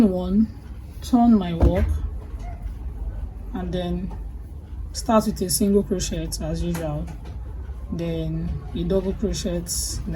1, turn my work, and then start with a single crochet as usual, then a double crochet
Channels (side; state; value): both; identical; correlation 1.00